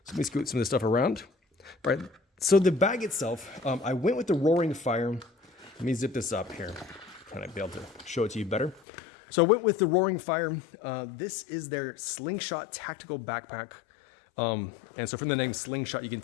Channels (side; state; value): right; drops out; at 8.8 s